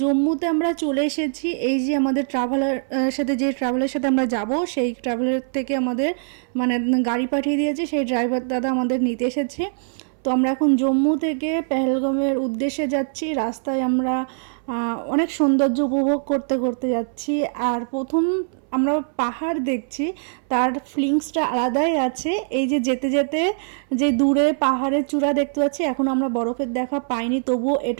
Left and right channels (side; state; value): left; silent; 64 dB below the other